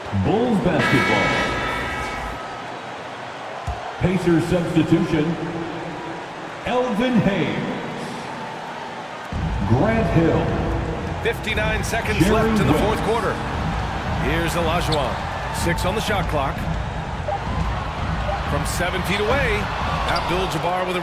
Bulls basketball. Pacers substitution. Elvin Hayes. Grant Hill. 59 seconds left in the fourth quarter. Here's Olajuwon. 6 on the shot clock. From 7 feet away, Abdul-Jabbar with a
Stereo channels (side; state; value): both; identical; correlation 1.00